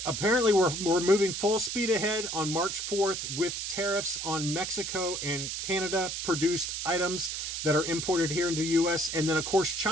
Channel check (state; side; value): noise; right; hiss, 4 dB below the sound